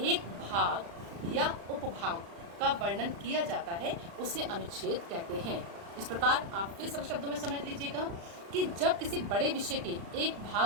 एक भाग या उपभाग का वर्णन किया जाता है, उसे अनुच्छेद कहते हैं। इस प्रकार आप फिर सरल शब्दों में समझ लीजिएगा कि जब किसी बड़े विषय के एक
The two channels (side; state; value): left; late; 35 ms